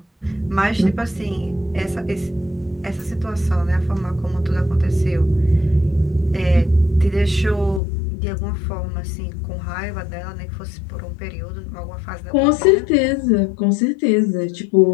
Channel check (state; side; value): drops out; right; at 7.8 s